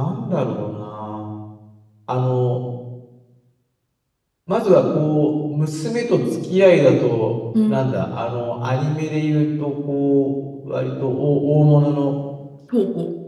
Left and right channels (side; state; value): both; identical; correlation 1.00